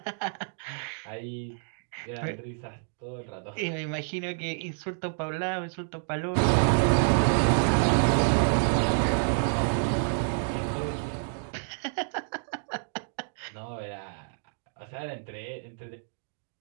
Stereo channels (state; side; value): silent; left; digital silence